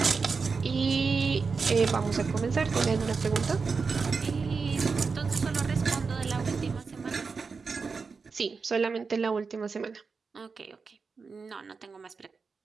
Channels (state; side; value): quieter; left; 4.9 dB